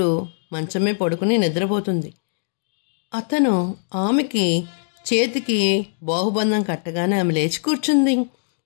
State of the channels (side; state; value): right; silent; digital silence